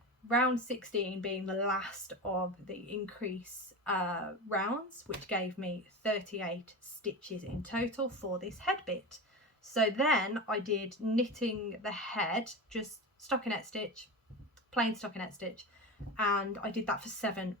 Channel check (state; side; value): normal; both; correlation 0.24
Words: round 16 being the last of the increase rounds, which gave me 38 stitches in total for this head bit. So then I did knitting the head, just stockinette stitch, plain stockinette stitch, and I did that for 7